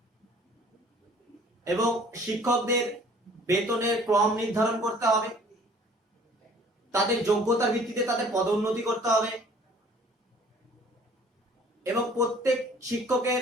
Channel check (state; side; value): normal; both; correlation 0.53